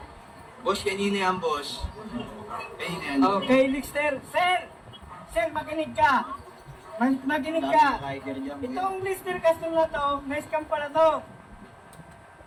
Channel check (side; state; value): both; identical; correlation 1.00